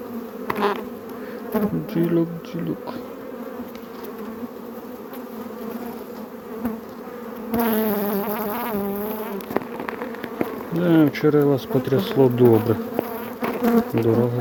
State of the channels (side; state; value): both; identical; correlation 1.00